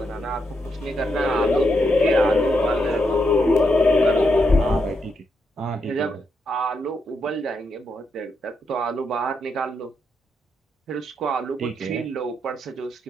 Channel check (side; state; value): both; normal; correlation 0.81